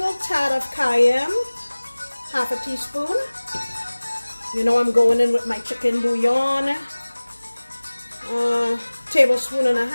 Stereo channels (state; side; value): inverted; both; correlation -1.00